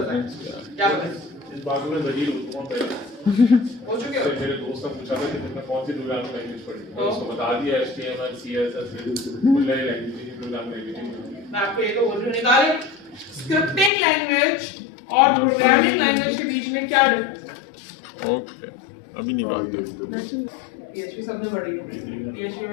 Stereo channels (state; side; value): drops out; right; at 13.9 s